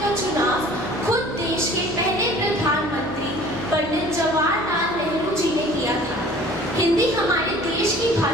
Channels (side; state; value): both; normal; correlation 0.49